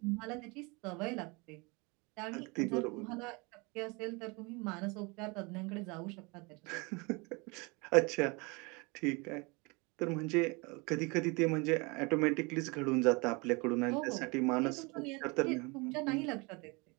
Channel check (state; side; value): quieter; left; 28.0 dB